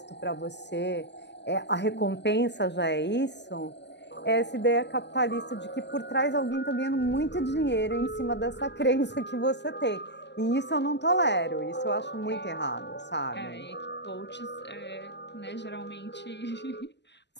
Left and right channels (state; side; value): late; right; 0.50 ms